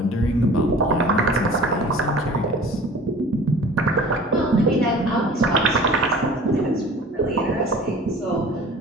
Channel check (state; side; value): normal; both; correlation 0.44